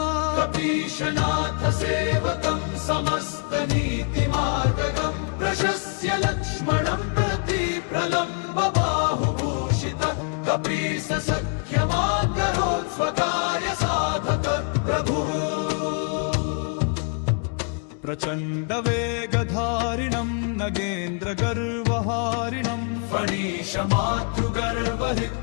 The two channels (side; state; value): right; quieter; 39.8 dB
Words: कपीशनाथ सेवकं समस्तनीतिमार्गगं प्रशस्य लक्ष्मणं प्रति प्रलम्ब बाहुभूषितः कपीश सख्यमाकरोत् स्वकार्य साधक प्रभुः प्रचण्डवेगधारिणं नगेन्द्रगर्वहारिणं